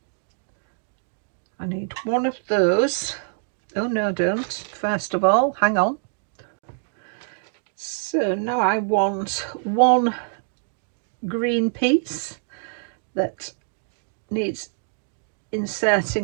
I need one of those. Oh no, don't. First of all, hang on. So now I want one green piece that needs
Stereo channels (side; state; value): left; silent; digital silence